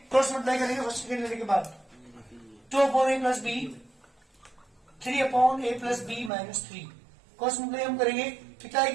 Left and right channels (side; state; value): left; drops out; at 6.3 s